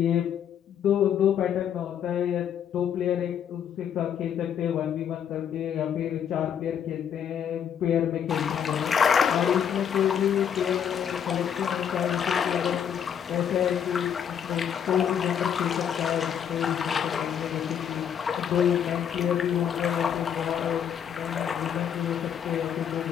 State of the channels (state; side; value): quieter; right; 8.6 dB